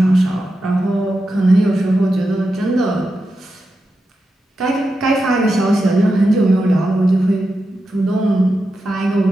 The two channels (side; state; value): both; normal; correlation 0.89